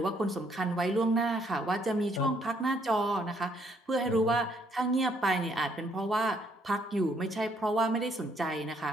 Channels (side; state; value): both; normal; correlation 0.68